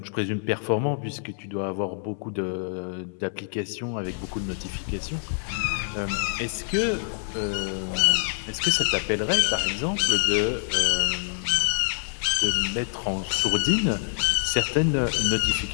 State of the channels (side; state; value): right; silent; digital silence